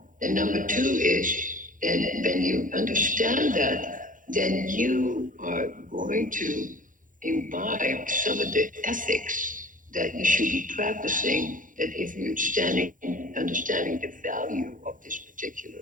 And number two is, then when you understand that, then you are going to imbibe some of the ethics that you should be practicing, that if you're understanding the value of this particular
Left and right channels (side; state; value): left; late; 0.38 ms